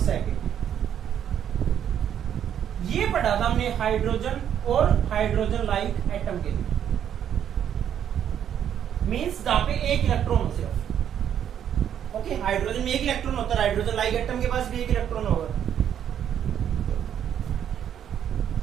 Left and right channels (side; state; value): left; quieter; 9.5 dB